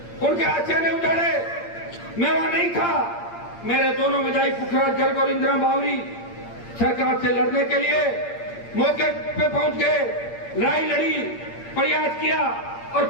उनके आशियाने उजाड़े, मैं वहां नहीं था। मेरे दोनों विधायक पुखराज गर्ग और इंदिरा बावरी सरकार से लड़ने के लिए मौके पे पहुंच गए, लड़ाई लड़ी, प्रयास किया और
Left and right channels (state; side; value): late; right; 8.7 ms